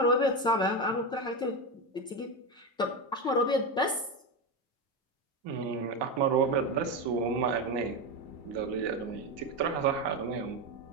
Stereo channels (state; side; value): normal; both; correlation 0.14